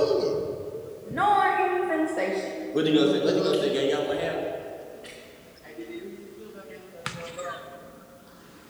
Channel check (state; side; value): identical; both; correlation 1.00